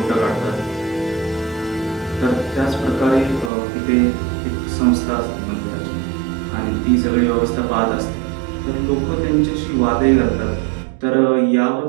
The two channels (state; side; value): drops out; left; at 3.5 s